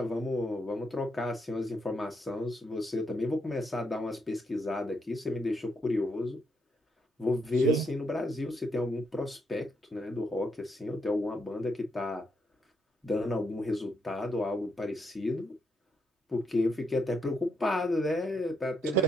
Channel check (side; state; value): both; normal; correlation 0.78